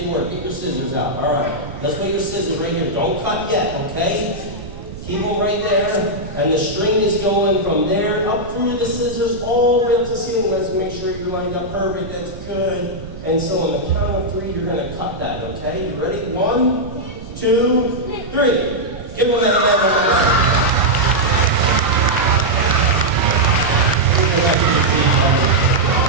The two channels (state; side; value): noise; right; rumble, 14 dB below the sound